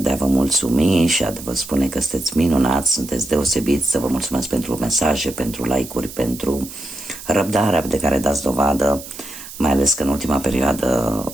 a vă mulțumi și a vă spune că sunteți minunați, sunteți deosebiți, să vă mulțumesc pentru mesaje, pentru like-uri, pentru răbdarea de care dați dovadă, mai ales că în ultima perioadă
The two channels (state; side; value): noise; right; hiss, 14 dB below the sound